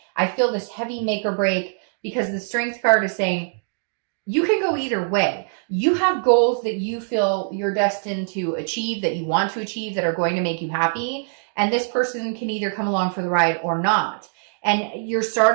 I feel this heavy make or break, because the Strength card is saying you can go either way. You have goals that you feel you're destined to achieve, that you want to achieve, that are going to make you happy. And this person can either come along for the ride or not. And you're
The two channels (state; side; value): silent; left; digital silence